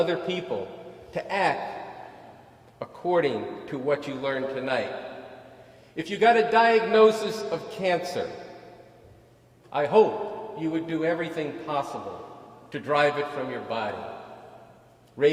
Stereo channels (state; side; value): identical; both; correlation 1.00